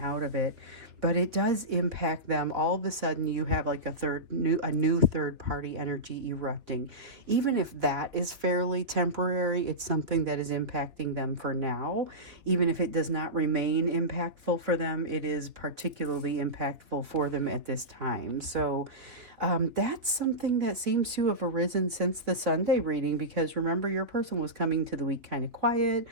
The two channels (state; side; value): late; left; 3.3 ms